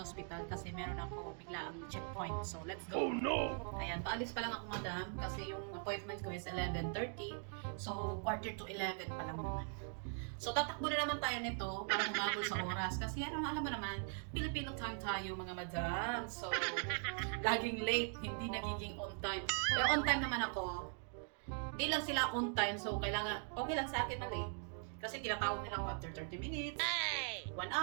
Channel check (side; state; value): left; silent; 50 dB below the other